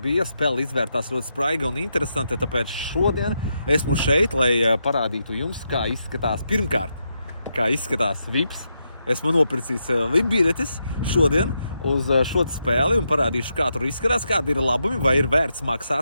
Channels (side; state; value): both; inverted; correlation -0.83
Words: spēle izvērtās ļoti spraiga un interesanta, tāpēc šodien esmu šeit, lai parādītu jums, kā izskatās pirmkārt, kā izskatās VIPs. Esmu nopircis VIP biļetes šodien uz šo spēli un parādīšu, kā tur izskatās, kādi ir labumi, vai ir vērts